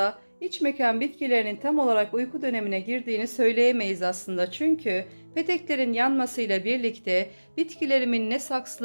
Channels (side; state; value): both; inverted; correlation -1.00